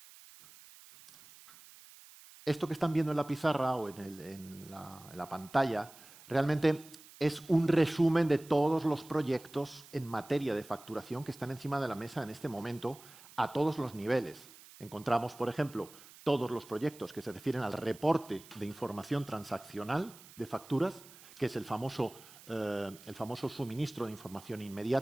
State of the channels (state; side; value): noise; right; hiss, 20 dB below the sound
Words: Esto que están viendo en la pizarra o en la pantalla realmente es un resumen de todos los proyectos en materia de facturación que están encima de la mesa en este momento a todos los niveles. Encontramos, por ejemplo, todos los proyectos que se refieren al reporte de información transaccional de facturas, que es el famoso suministro de información